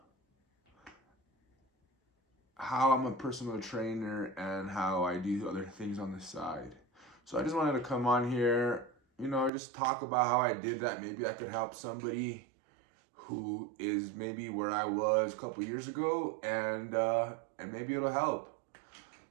how I'm a personal trainer and how I do other things on the side. So I just wanted to come on here, just talk about how I did that. Maybe I could help somebody who is maybe where I was a couple years ago, and maybe it'll help.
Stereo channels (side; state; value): left; drops out; at 9.5 s